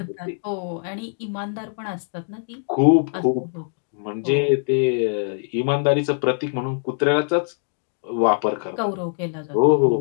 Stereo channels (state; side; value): silent; right; digital silence